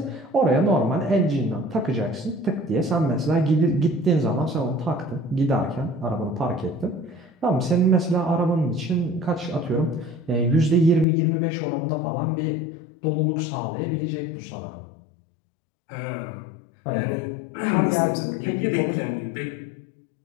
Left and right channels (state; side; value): drops out; right; at 11.1 s